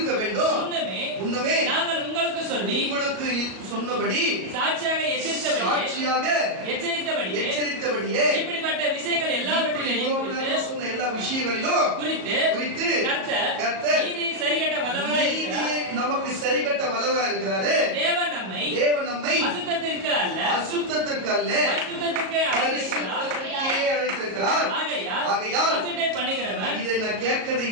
முன்னமே நாங்கள் உங்களுக்கு சொன்னபடி சாட்சியாக எச்சரித்தபடியே இப்படிப்பட்ட விஷயங்கள் எல்லாவற்றிலும் சொன்ன எல்லா விஷயங்களிலும் குறித்து கர்த்தர் சரிகட்ட வல்லவராய் நமக்கு சரிகட்ட வல்லவராய் இருக்கிறாரு. தேவன் நம்மை அசுத்தத்திற்கு அல்ல பரிசுத்தத்திற்கே அழைத்திருக்கிறார். ஆகையால் அசட்டை பண்ணுகிறவன், இதை நான் கேட்கிறது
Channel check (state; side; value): late; left; 37 ms